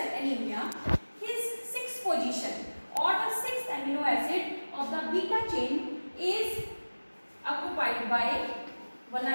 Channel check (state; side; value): inverted; both; correlation -1.00